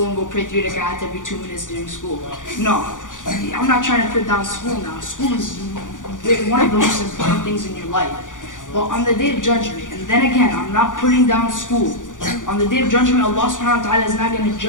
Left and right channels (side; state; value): right; late; 0.88 ms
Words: and go pray 3 rak'at every 2 minutes during school. No, I'm not trying to put down school now. School is one of the most important things in your life. But on the day of judgment, and then again, I'm not putting down school. On the day of judgment, Allah subhanahu wa ta'ala is not going to